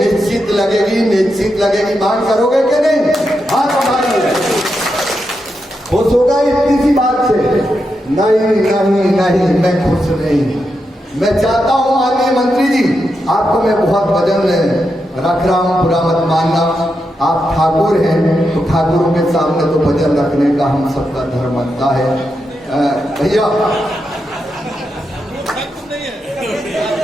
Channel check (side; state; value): both; normal; correlation 0.85